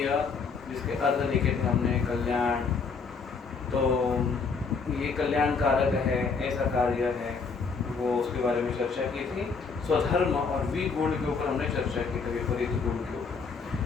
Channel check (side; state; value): right; quieter; 5.1 dB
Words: जिसके अर्थ लिखे थे हमने, कल्याण। तो ये कल्याण कारक है, ऐसा कार्य है, वो उसके बारे में चर्चा की थी। स्वधर्म और विगुण के ऊपर हमने चर्चा की थी, विपरीत गुण के